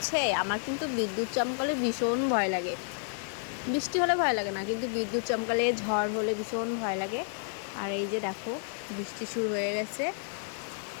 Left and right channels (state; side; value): silent; right; digital silence